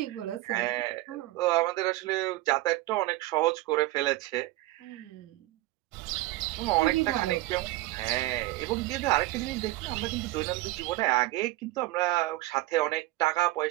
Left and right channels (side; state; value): left; quieter; 18.2 dB